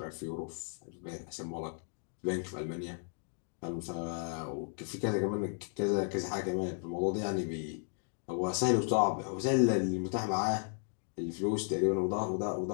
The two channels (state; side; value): silent; right; 55 dB below the other